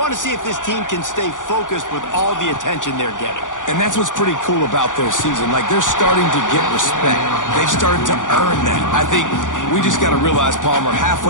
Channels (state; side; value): late; right; 0.87 ms